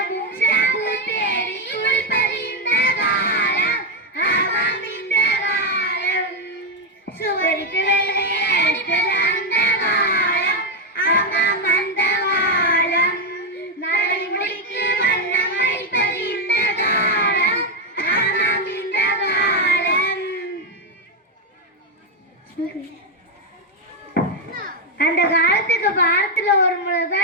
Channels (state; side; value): normal; both; correlation 0.02